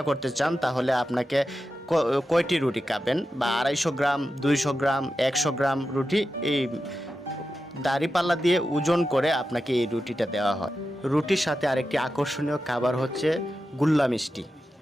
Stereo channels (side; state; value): both; normal; correlation 0.91